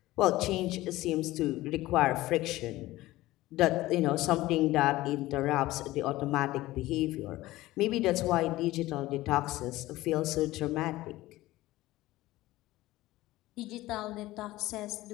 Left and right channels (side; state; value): right; quieter; 17.3 dB